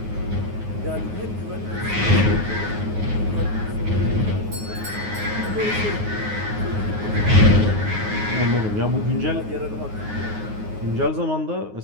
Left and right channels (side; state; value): left; late; 9.5 ms